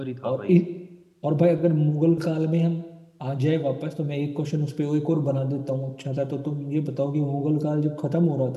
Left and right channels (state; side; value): identical; both; correlation 1.00